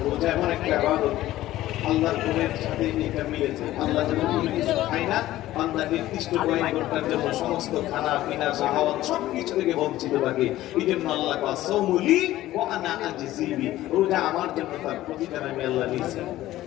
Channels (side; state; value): right; quieter; 15.1 dB